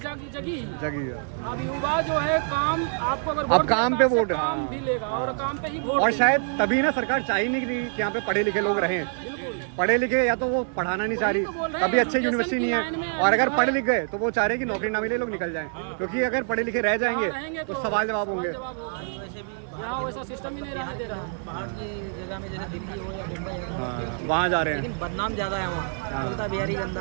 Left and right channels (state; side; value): silent; left; digital silence